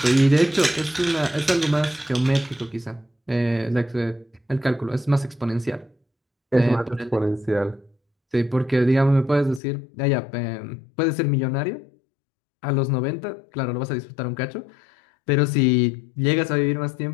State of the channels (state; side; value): drops out; right; at 9.6 s